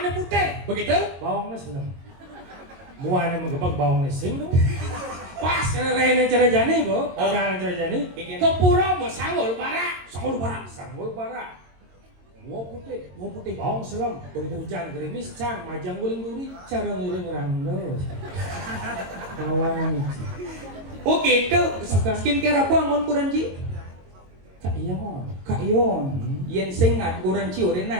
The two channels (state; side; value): late; left; 22 ms